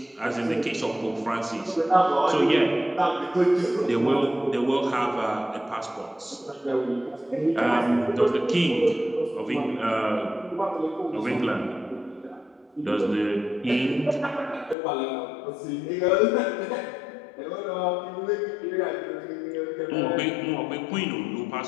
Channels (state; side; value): drops out; right; at 14.8 s